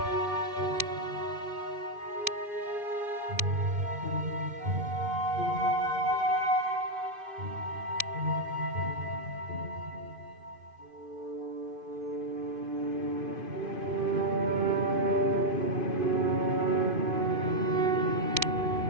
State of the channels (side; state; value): left; late; 2.5 ms